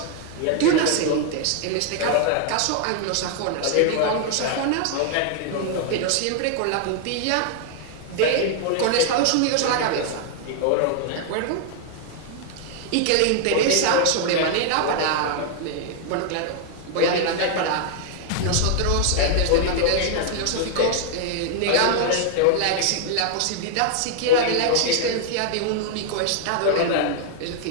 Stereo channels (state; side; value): different; both; correlation 0.00